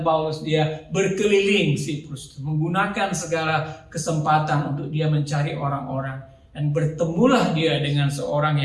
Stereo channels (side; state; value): both; identical; correlation 1.00